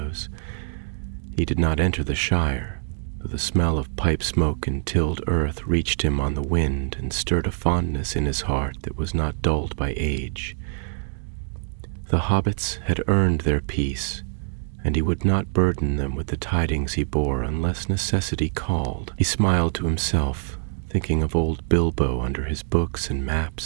He did not enter the Shire, though the smell of pipe smoke and tilled earth reached him on the wind and stirred a fondness in his heart that was not dulled by age. The hobbits had earned their peace, and he would not burden them with the tidings he bore unless necessity called. He smiled to himself, thinking of old Bilbo under his books and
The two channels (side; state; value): left; silent; 62 dB below the other